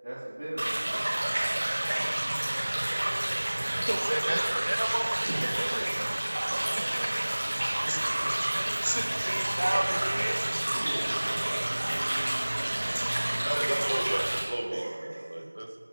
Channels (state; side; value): inverted; both; correlation -1.00